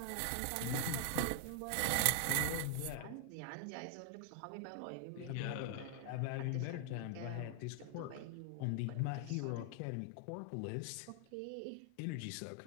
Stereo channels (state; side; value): different; both; correlation 0.00